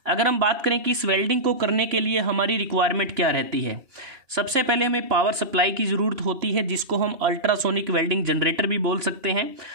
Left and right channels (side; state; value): left; late; 2.9 ms